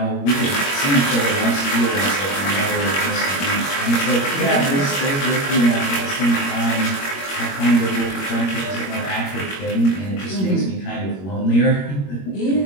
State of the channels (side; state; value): right; late; 21 ms